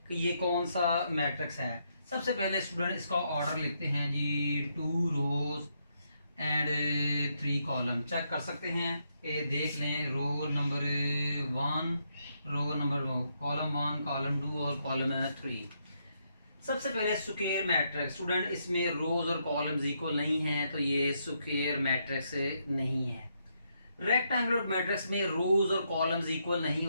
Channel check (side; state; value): both; inverted; correlation -0.78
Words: कि ये कौन सा मैट्रिक्स है। सबसे पहले स्टूडेंट इसका ऑर्डर लिखते हैं जी 2 रोज एंड 3 कॉलम। चेक कर सकते हैं ये देख लें row number 1 row number column 1 column 2 और कॉलम 3। सबसे पहले स्क्वायर मैट्रिक्स। स्टूडेंट इसमें रोज और कॉलम्स इक्वल नहीं है तो ये स्क्वायर मैट्रिक्स नहीं है। रेक्टेंगुलर मैट्रिक्स में रोज और कॉलम्स इक्वल नहीं